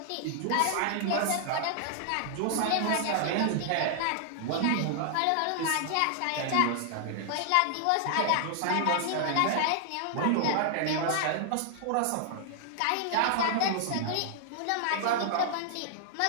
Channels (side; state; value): both; different; correlation 0.00